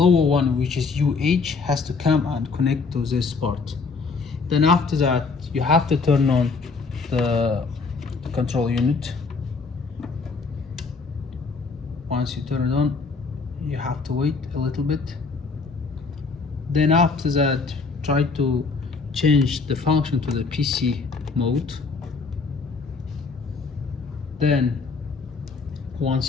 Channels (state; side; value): quieter; right; 4.5 dB